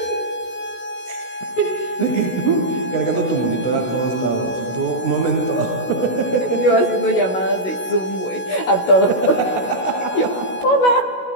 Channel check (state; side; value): late; right; 16 ms